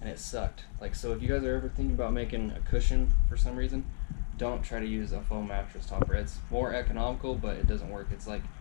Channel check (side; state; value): right; silent; digital silence